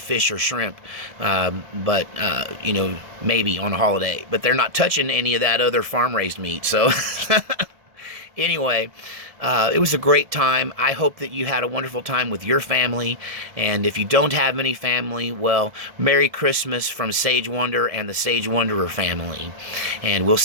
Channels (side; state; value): left; late; 1.7 ms